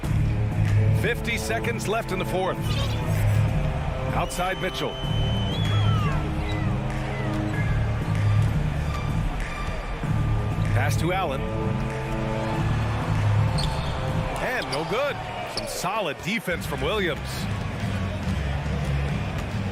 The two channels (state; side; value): identical; both; correlation 1.00